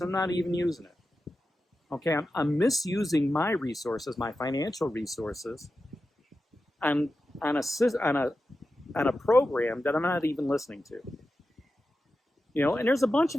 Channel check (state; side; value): normal; both; correlation 0.91